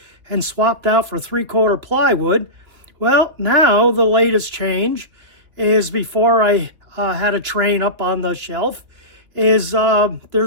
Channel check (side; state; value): left; late; 2.6 ms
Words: and swapped out for 3/4 plywood. Well, now the latest change is, before I had a train up on the shelf, is